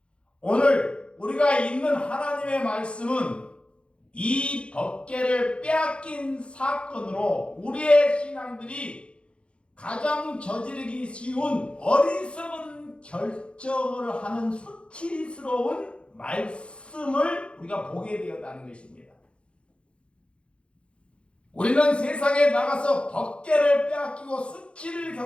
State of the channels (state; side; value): late; right; 0.057 ms